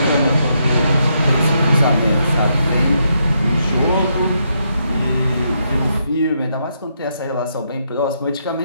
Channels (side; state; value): both; inverted; correlation -0.78